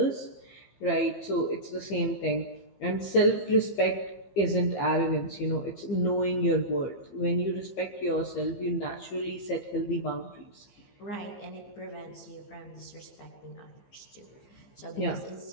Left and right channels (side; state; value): right; late; 15 ms